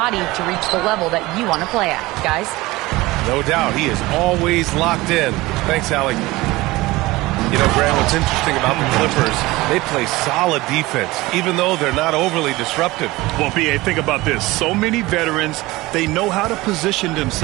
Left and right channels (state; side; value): quieter; left; 20.1 dB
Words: to reach the level that you want to play at, guys. No doubt, he is always locked in. Thanks, Allie. You know, Grant, what's interesting about the Clippers, they play solid defense, even though they're not overly disruptive. Well, B.A., think about this. So many veterans, they know how to position